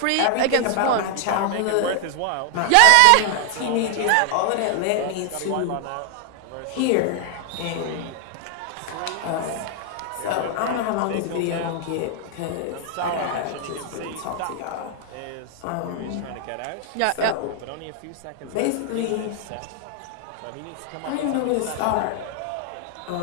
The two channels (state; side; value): different; both; correlation 0.00